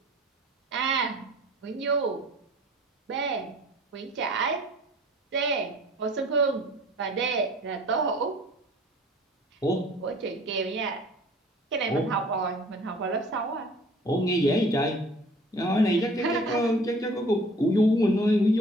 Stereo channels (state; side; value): normal; both; correlation 0.50